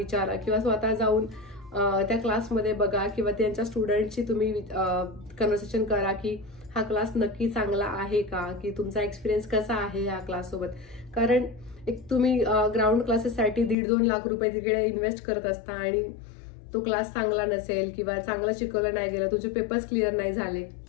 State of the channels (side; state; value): right; drops out; at 13.8 s